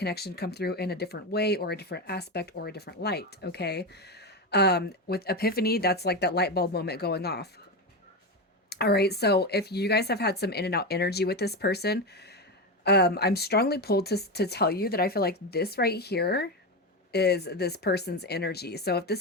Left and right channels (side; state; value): both; normal; correlation 0.16